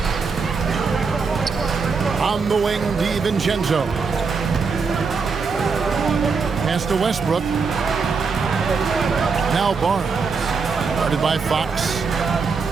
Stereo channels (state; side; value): quieter; left; 5.0 dB